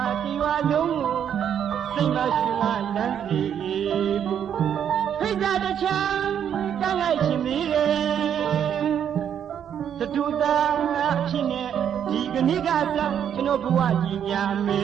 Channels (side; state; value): left; quieter; 8.9 dB